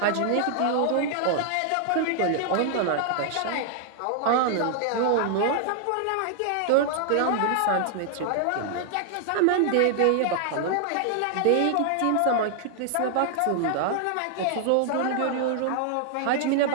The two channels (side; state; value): both; different; correlation 0.00